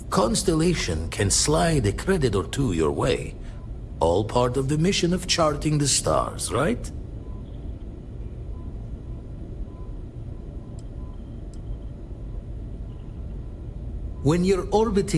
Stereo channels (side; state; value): both; identical; correlation 1.00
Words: Constellation can slide a credit or 2 your way. All part of the mission of charting the stars, right? When you're